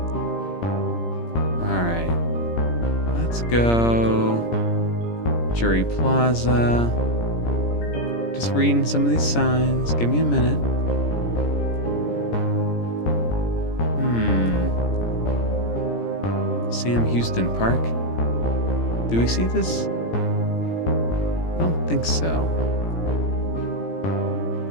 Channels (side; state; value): right; late; 17 ms